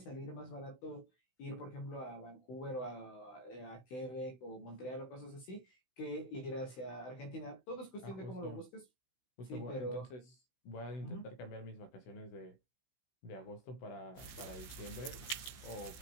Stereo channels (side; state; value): right; late; 16 ms